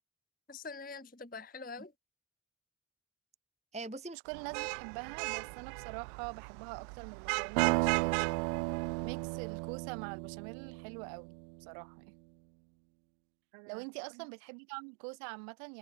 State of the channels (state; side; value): drops out; left; at 4.2 s